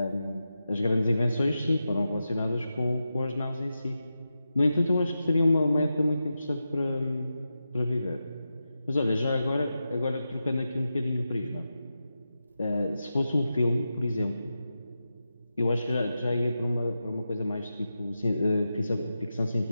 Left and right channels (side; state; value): both; inverted; correlation -0.90